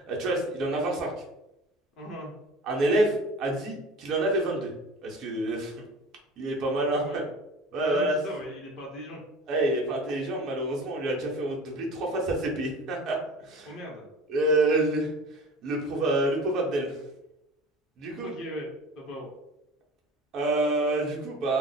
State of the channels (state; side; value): normal; both; correlation 0.39